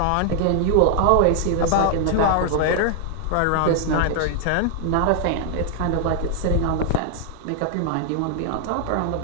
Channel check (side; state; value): both; different; correlation 0.00